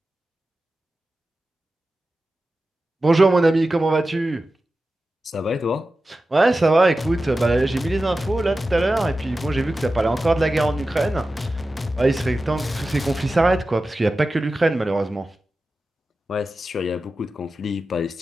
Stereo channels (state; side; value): normal; both; correlation 0.94